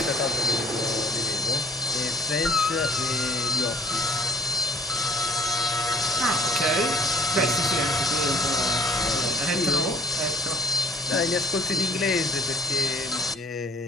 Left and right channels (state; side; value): normal; both; correlation 0.62